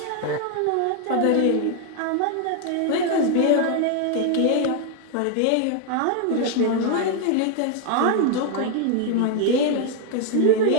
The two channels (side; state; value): both; different; correlation 0.00